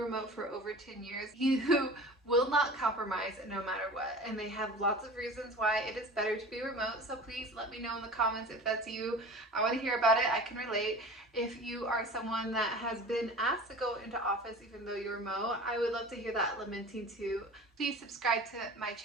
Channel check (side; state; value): both; normal; correlation 0.38